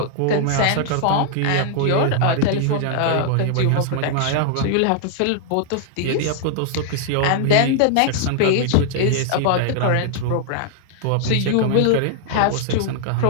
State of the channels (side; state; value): both; different; correlation -0.01